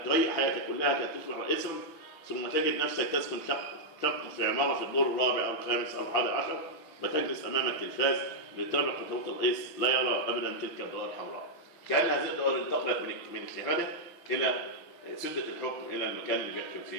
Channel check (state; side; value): late; right; 6.0 ms